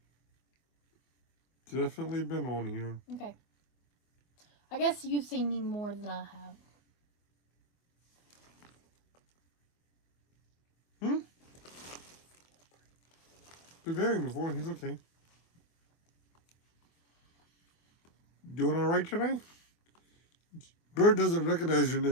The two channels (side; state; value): right; late; 24 ms